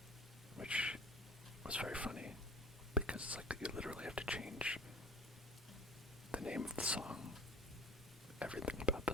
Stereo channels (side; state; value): both; normal; correlation 0.42